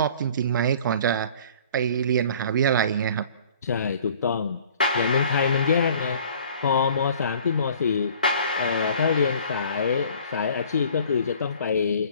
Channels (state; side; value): inverted; both; correlation -0.50